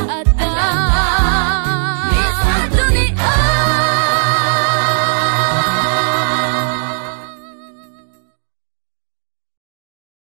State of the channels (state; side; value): silent; left; digital silence